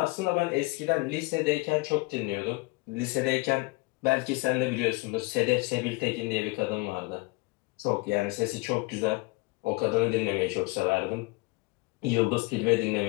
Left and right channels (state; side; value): quieter; right; 24.6 dB